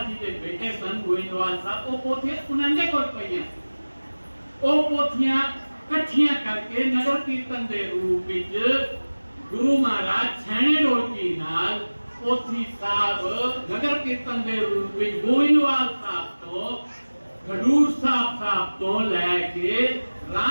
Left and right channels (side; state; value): both; inverted; correlation -1.00